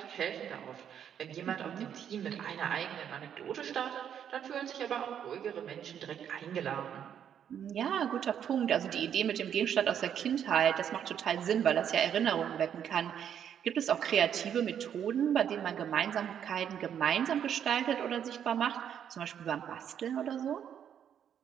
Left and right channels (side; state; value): left; quieter; 9.0 dB